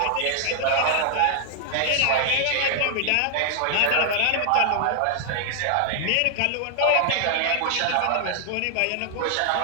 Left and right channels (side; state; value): both; different; correlation 0.00